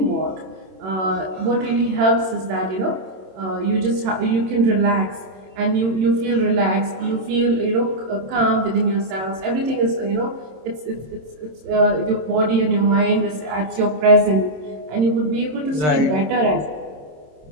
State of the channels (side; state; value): left; late; 27 ms